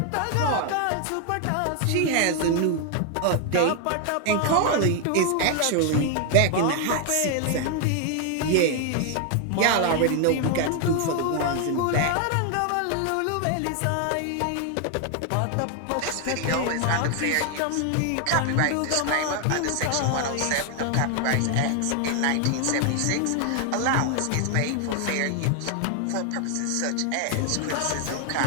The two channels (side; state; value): both; different; correlation 0.00